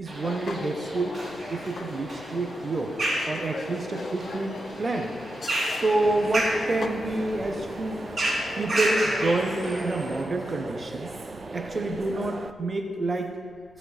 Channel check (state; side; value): noise; left; rumble, 30 dB below the sound